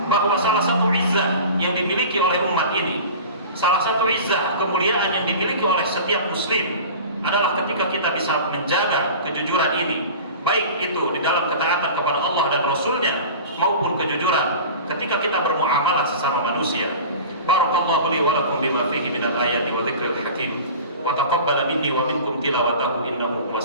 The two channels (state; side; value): inverted; both; correlation -0.37